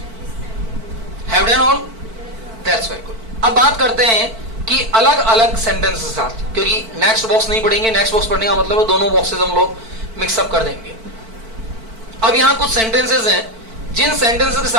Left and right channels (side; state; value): left; late; 4.5 ms